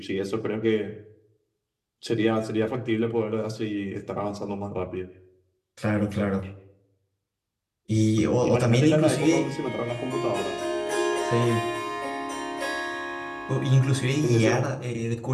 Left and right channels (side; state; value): both; identical; correlation 1.00